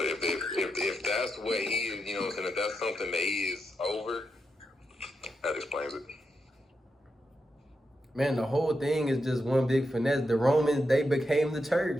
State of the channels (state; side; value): normal; both; correlation 0.85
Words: if that's what he is, you know what I'm saying, if that's something that he is over, that explains it. Man, the whole thing is just one big finesse. The Romans, they became the